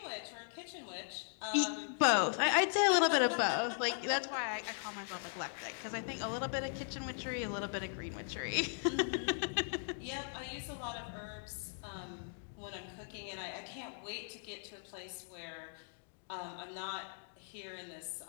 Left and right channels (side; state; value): right; silent; digital silence